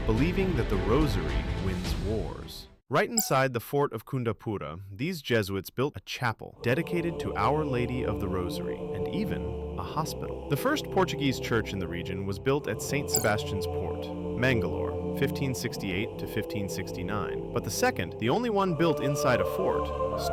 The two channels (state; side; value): identical; both; correlation 1.00